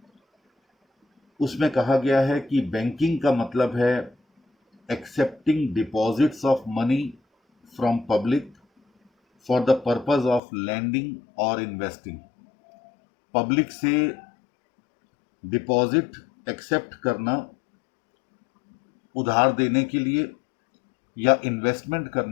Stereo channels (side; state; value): right; drops out; at 10.4 s